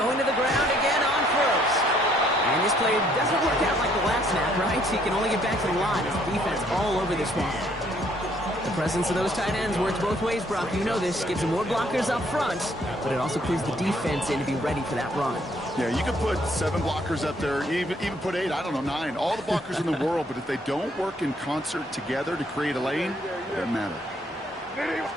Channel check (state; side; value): normal; both; correlation 0.66